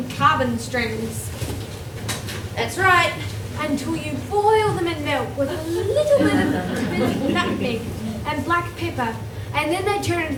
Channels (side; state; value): both; identical; correlation 1.00